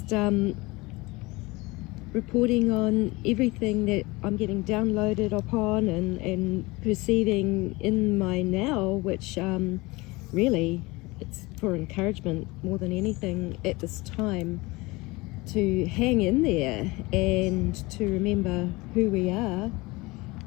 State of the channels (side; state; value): right; quieter; 23.1 dB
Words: reporting on everything that I'm getting downloaded upon and perceiving in my now, which really it's for encouragement more than anything at this time, to hang in there and to remember who we are,